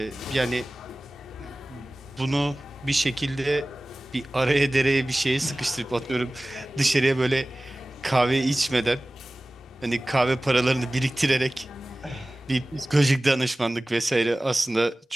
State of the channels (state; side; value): normal; both; correlation 0.98